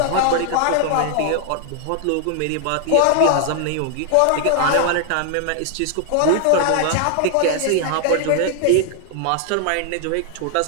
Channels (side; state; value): both; different; correlation 0.00